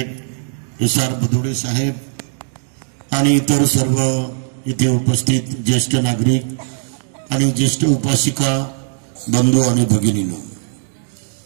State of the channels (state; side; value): silent; left; digital silence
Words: SR बदुडे साहेब आणि इतर सर्व इथे उपस्थित ज्येष्ठ नागरिक आणि ज्येष्ठ उपासिका बंधू आणि भगिनींनो,